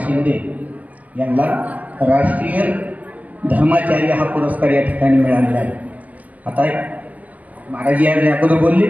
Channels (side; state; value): left; late; 0.078 ms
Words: यांना राष्ट्रीय धर्माचार्य हा पुरस्कार या ठिकाणी मिळालेला आहे। आता महाराज या अगोदर बोलले